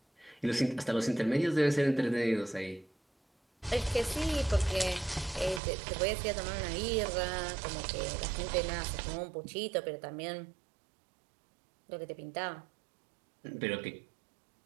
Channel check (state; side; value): drops out; left; at 5.6 s